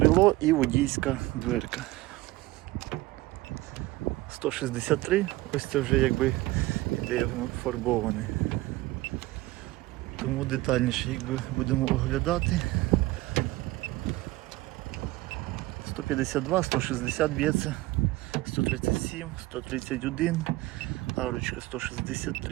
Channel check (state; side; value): quieter; left; 19.0 dB